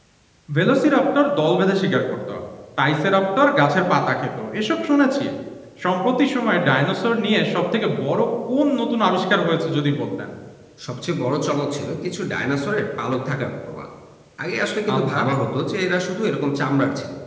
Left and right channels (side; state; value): both; identical; correlation 1.00